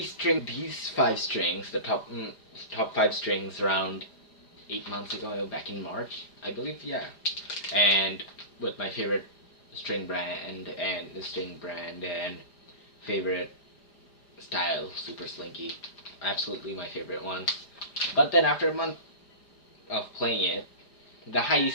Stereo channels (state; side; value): late; right; 4.9 ms